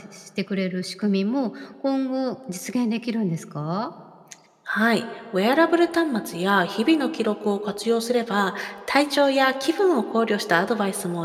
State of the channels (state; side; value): identical; both; correlation 1.00